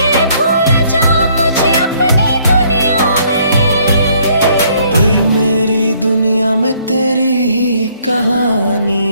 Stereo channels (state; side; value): inverted; both; correlation -0.65